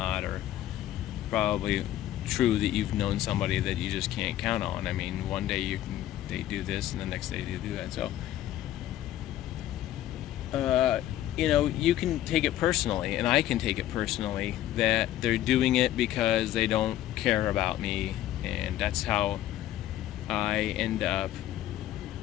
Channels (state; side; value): quieter; right; 13.3 dB